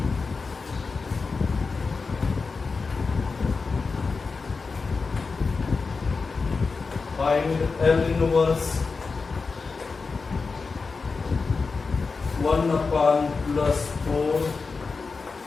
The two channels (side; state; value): right; quieter; 4.5 dB